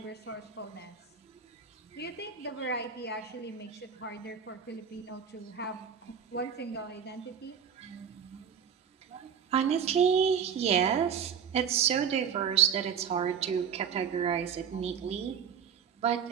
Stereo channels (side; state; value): left; quieter; 7.5 dB